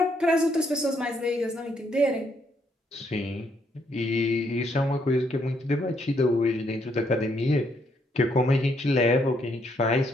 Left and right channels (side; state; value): both; normal; correlation 0.73